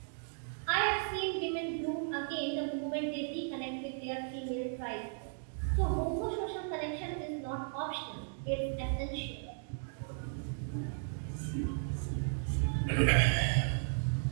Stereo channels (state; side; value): silent; left; digital silence